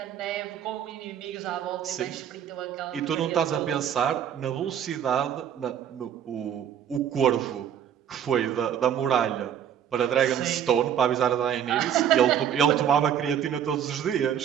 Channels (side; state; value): left; quieter; 9.2 dB